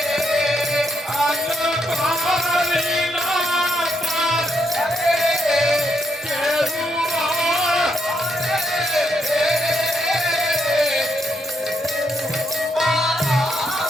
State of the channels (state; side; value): normal; both; correlation 0.77